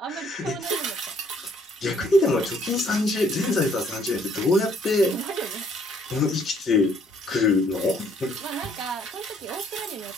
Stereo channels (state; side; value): normal; both; correlation 0.64